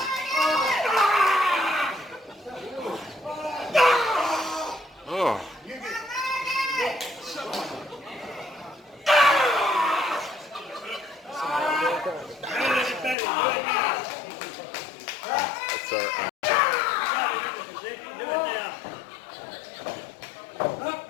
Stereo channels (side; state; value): right; drops out; at 13.2 s